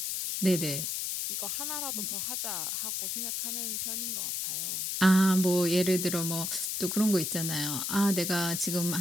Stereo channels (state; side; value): noise; left; hiss, 1 dB below the sound